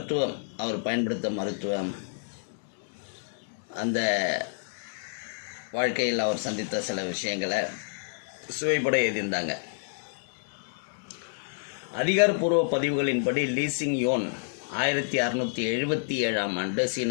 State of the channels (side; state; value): right; silent; digital silence